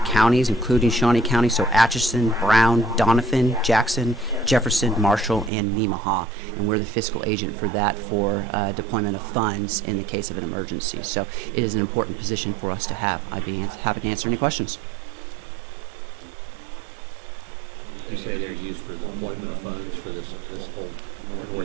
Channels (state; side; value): drops out; left; at 5.5 s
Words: counties, including Shawnee County, so Atchison, Brown, Doniphan, Jackson, Jefferson, Marshall, and Nemaha. And we're the fiscal agent for that for deployment of funds in the case of an emergency. So it is an important position for us to have. I'd be happy to answer any questions. You say they're used for the deployment of funds for this whole